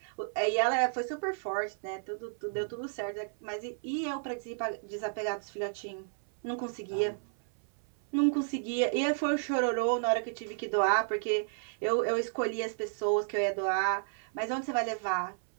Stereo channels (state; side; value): silent; left; 56 dB below the other